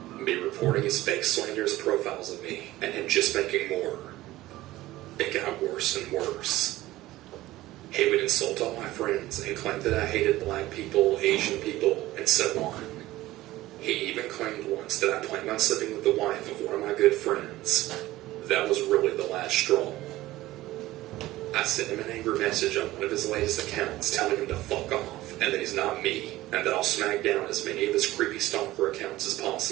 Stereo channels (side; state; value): left; quieter; 16.8 dB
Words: Me reporting his fake slanderous profiles of me, and him just making more. It got worse and worse. He would insult all my friends and claim that I hated black people, Asian people, and so on. He even claimed once that I planned on sleeping with the wife of one of my good friends. That was really the last straw. I sent him an angry message on one of his latest accounts telling him to fuck off, and that he's not me, and that I'll smack down as many of his creepy stalker accounts as